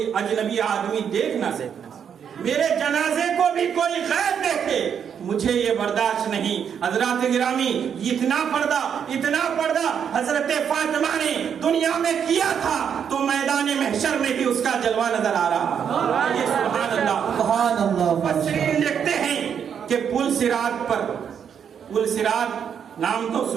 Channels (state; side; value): quieter; left; 7.8 dB